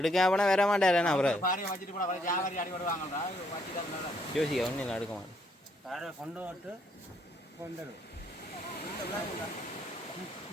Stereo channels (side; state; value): both; normal; correlation 0.71